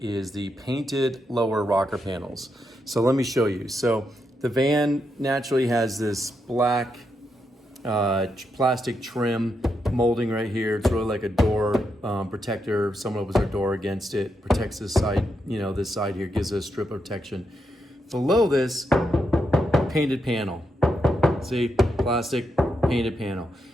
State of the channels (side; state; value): both; normal; correlation 0.83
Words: is the painted lower rocker panels. So let me show you. So the van naturally has this black plastic trim molding right here. It's really like a door protector. If someone opens their door against it, protects this side, this side here, gives it a strip of protection. Below this, painted panel. See, plastic painted panel.